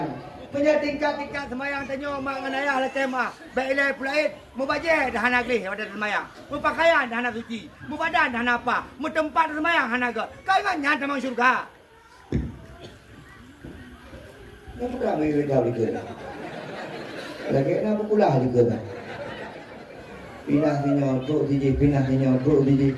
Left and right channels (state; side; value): identical; both; correlation 1.00